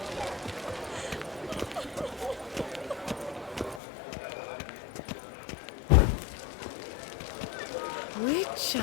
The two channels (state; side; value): drops out; right; at 3.8 s